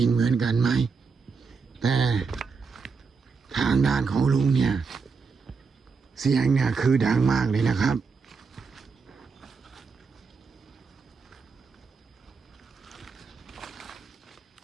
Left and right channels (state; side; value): quieter; left; 5.0 dB